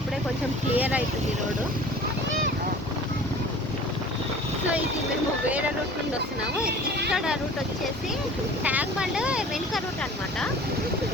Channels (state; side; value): normal; both; correlation 0.44